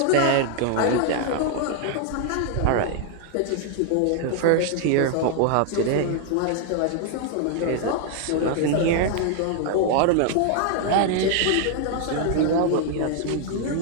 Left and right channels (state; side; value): different; both; correlation 0.00